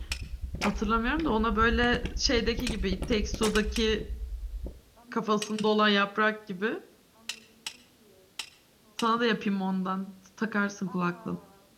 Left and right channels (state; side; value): identical; both; correlation 1.00